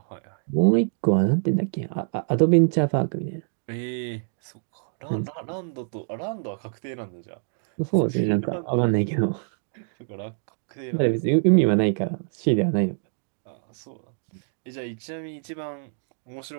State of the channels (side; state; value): left; silent; digital silence